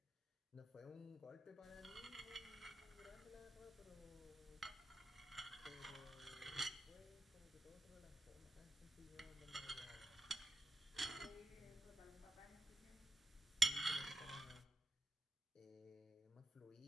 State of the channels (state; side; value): normal; both; correlation 0.89